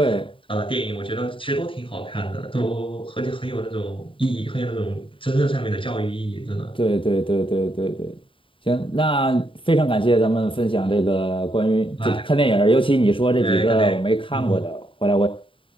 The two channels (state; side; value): late; right; 0.25 ms